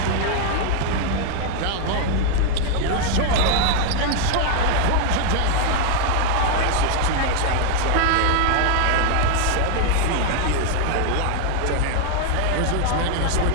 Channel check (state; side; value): different; both; correlation 0.00